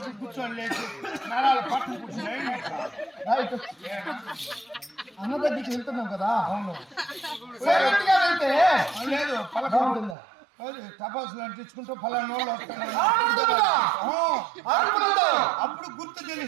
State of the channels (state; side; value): drops out; left; at 10.2 s